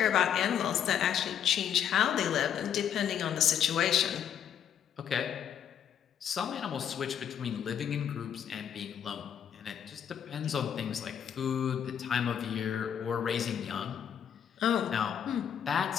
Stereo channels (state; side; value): quieter; right; 9.0 dB